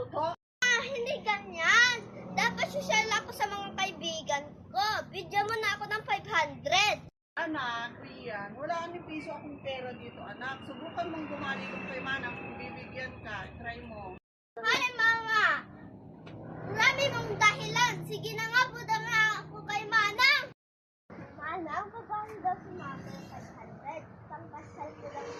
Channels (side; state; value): both; identical; correlation 1.00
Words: Hindi ganyan. Dapat social ako sa mga kaibigan ko. Bigyan mo na ako ng 500. Anak, Rian, wala ni piso akong pera dito, anak. Subukan mong bumali kung kay Manang kung bibigyan ka. Try mo. Ay, mama! Marami mong dahilan. Sige na nga, buda nga ako kay Manang. Manang, paano daw si mama ng 500? Pangkasal ko lang